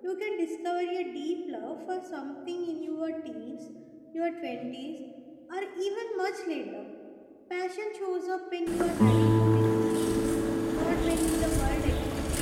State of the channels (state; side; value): identical; both; correlation 1.00